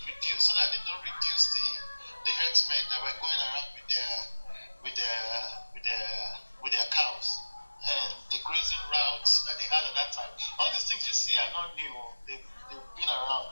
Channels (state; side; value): inverted; both; correlation -1.00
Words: reduced so that they don't reduce the herdsmen that were going around with their cows and the grazing routes that they had at that time. All these things you see are not new; they've been